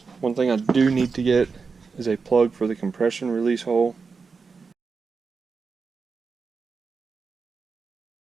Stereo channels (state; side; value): quieter; left; 4.9 dB